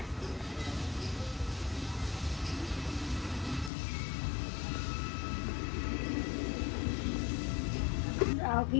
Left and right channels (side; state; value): right; drops out; at 3.7 s